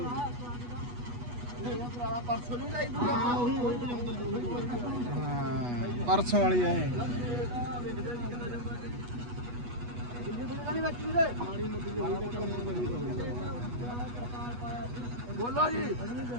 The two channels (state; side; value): late; left; 8.2 ms